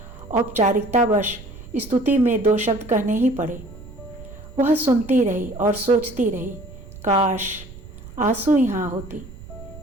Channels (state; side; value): noise; right; rumble, 16 dB below the sound